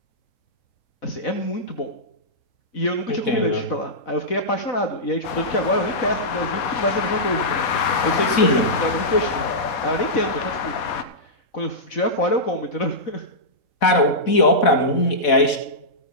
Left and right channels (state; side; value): late; right; 4.2 ms